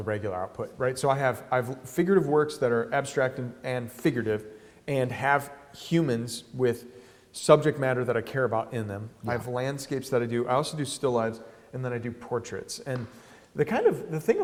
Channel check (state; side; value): identical; both; correlation 1.00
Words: regular output, right? So I've figurative works that are abstract and figurative, and have humans with subject matter that I care about in them. I have landscapes that I do. I also do still lives, and then I do portraits. And the thing